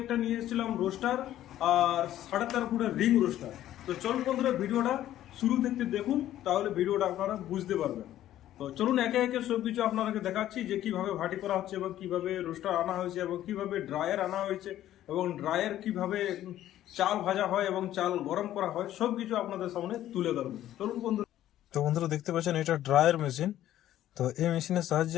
নিয়ে এসেছিলাম রোস্টার আর 13.5 ফুটের রিং রোস্টার। তো চলুন বন্ধুরা, ভিডিওটা শুরু থেকে দেখুন, তাহলে ভিডিওটা আপনারা বুঝতে পারবেন। তো চলুন একে একে সবকিছু আপনাদেরকে দেখাচ্ছি যে কিভাবে ভাটি করা হচ্ছে এবং কিভাবে রোস্টার আনা হয়েছে এবং কিভাবে ড্রায়ার আনা হয়েছে এবং ড্রায়ার কিভাবে চাল ভাজা হয় এবং চাল গরম করা হয়, সবকিছু আপনাদের সামনে তুলে ধরবো। চলুন বন্ধুরা। তো বন্ধুরা দেখতে পাচ্ছেন এটা ড্রায়ার মেশিন। তো এই মেশিনের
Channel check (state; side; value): quieter; right; 12.8 dB